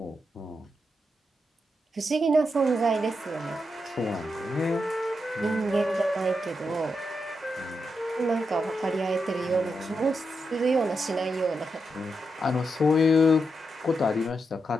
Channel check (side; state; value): both; normal; correlation 0.85